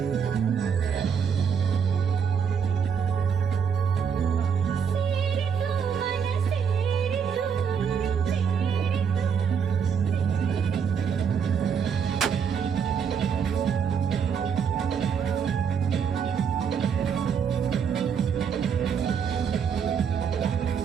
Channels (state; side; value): quieter; left; 7.0 dB